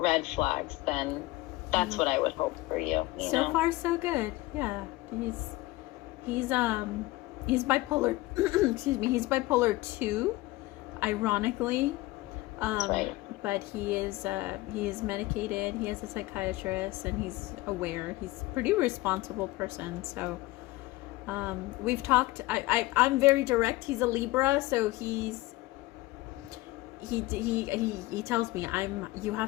flags, then that's what I would hope for you. So far, so good. Yeah, he's bipolar. Excuse me, he's bipolar 2. Ironically, that's right. But he is medicated. He has a psychiatrist, and he's aware. He's a pretty responsible person. So we've talked. I'm very direct. He's a Libra, so he tells me you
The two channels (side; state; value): right; quieter; 19.2 dB